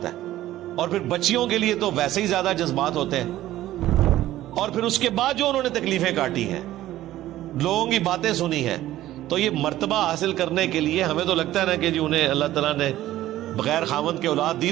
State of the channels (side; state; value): left; quieter; 14.5 dB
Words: ہے. اور پھر بچیوں کے لیے تو ویسے ہی زیادہ جذبات ہوتے ہیں. اور پھر اس کے بعد جو انہوں نے تکلیفیں کاٹی ہیں, لوگوں کی باتیں سنی ہیں, تو یہ مرتبہ حاصل کرنے کے لیے ہمیں تو لگتا ہے نا کہ جی انہیں اللہ تعالیٰ نے بغیر خاوند کے اولاد دی,